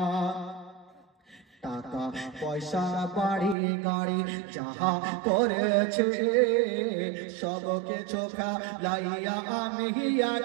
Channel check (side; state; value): left; drops out; at 3.6 s